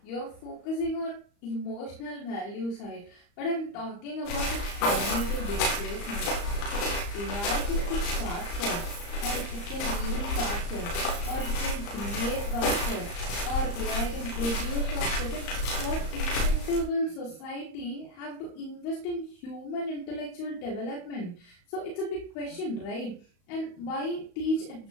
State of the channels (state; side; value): late; right; 35 ms